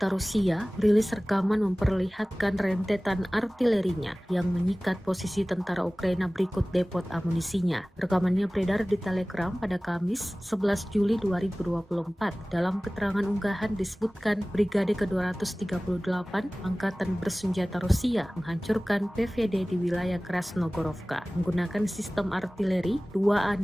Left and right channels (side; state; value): both; normal; correlation 0.98